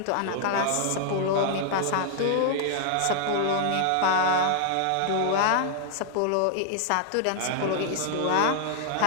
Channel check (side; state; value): both; different; correlation -0.01